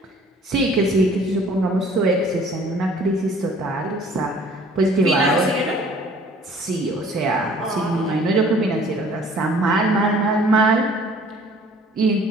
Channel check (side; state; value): both; normal; correlation 0.53